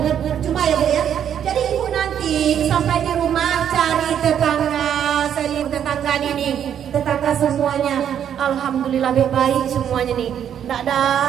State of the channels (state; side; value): quieter; left; 9.3 dB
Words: Percuma ya bu ya. Jadi ibu nanti sampai di rumah cari tetangga, saya tetangga ini, tetangga semuanya, alhamdulillah baik semuanya nih. Nggak ada